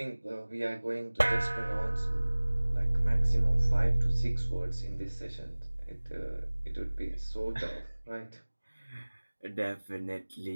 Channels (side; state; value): both; inverted; correlation -1.00